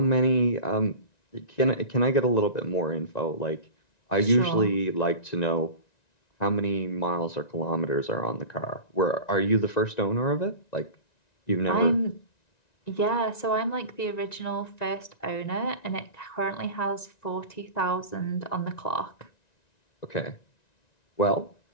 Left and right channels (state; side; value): late; right; 1.9 ms